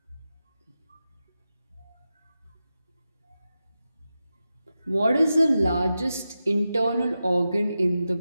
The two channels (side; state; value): both; inverted; correlation -0.91